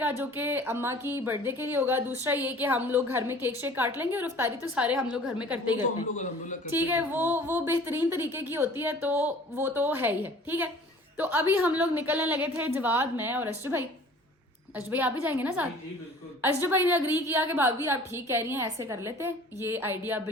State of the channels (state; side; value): normal; both; correlation 0.48